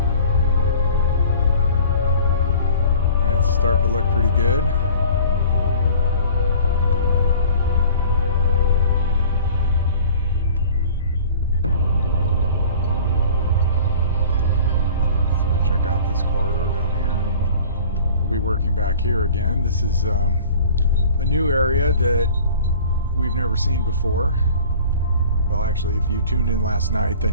And it's starting to look pretty good. Let's go check out this corridor down here. We'll be working back here again. This is a new area that we've never seen before. Well, actually, if you tuned in last night,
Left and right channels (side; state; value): both; inverted; correlation -0.45